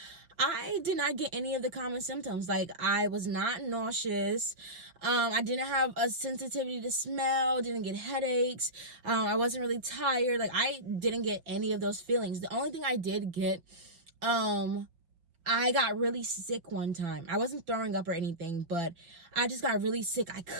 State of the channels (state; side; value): late; left; 5.9 ms